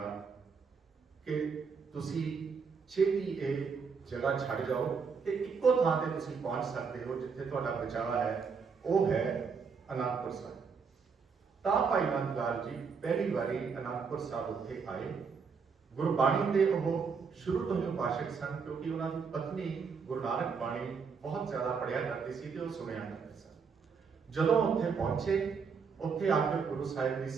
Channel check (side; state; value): left; quieter; 5.6 dB